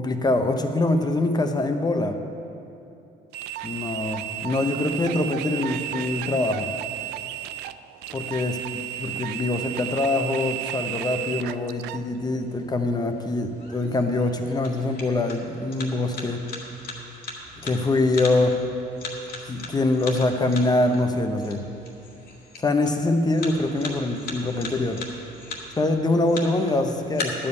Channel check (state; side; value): normal; both; correlation 0.66